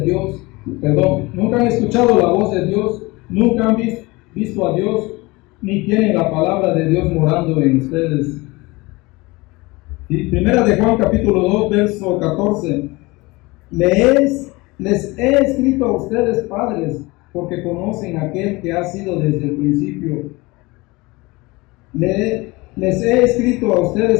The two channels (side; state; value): right; quieter; 23.2 dB